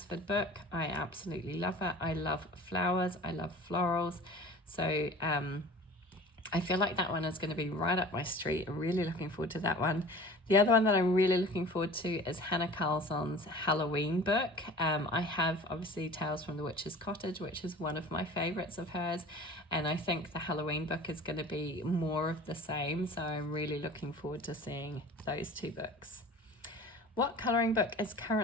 book. I absolutely love it. I love flowers. I love florals. So I feel like that one is going to be right up my street. I'm really looking forward to that one. The other one that I'm really looking forward to is Hannah Carlson's Halloween book. I have obviously Tales from the Witch's Cottage, which is one of my favourites of hers. And I think the Halloween book is going to be more of the same. So I'm really looking forward to seeing those two books. What colouring book is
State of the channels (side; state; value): both; normal; correlation 0.42